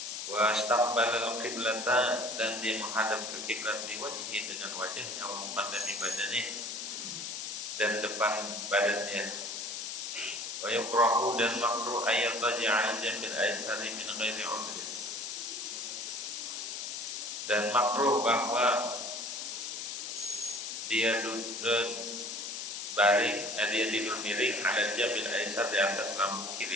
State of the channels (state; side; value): noise; left; hiss, 5 dB below the sound